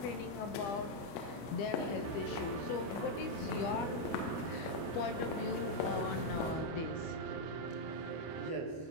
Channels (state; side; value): late; right; 25 ms